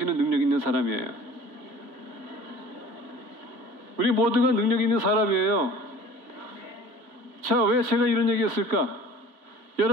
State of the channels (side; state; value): left; late; 3.0 ms